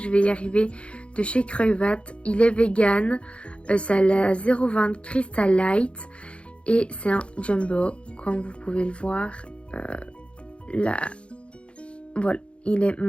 vais y arriver, de chez Creuvat. Il est vegan, c'est la 0,20 Crystal Light et c'est un jumbo comme vous pouvez le voir. Là, voilà, il est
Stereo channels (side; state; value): right; late; 0.059 ms